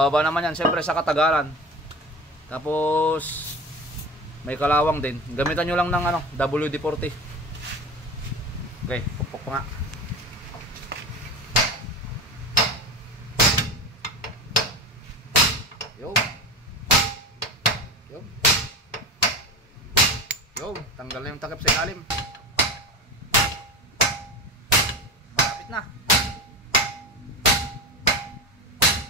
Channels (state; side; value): normal; both; correlation 0.28